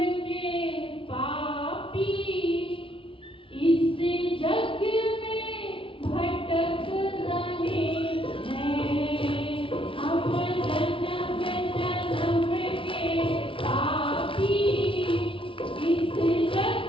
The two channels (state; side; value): late; right; 0.25 ms